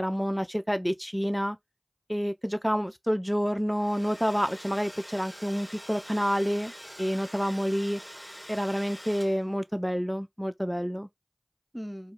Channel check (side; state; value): both; identical; correlation 1.00